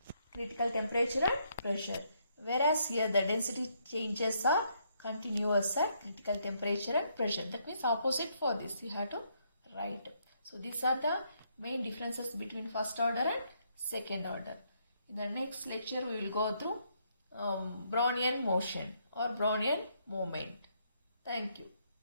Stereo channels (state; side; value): inverted; both; correlation -0.73